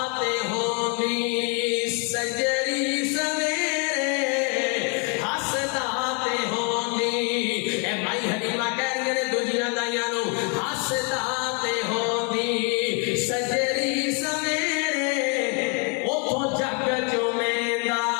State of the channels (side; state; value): right; quieter; 36.2 dB